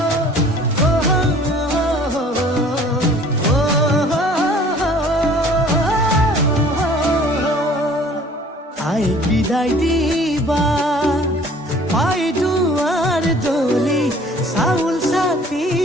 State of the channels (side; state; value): both; normal; correlation 0.52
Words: আই বিদায় দিবা পাই দুৱাৰ দলি চাউল চাতি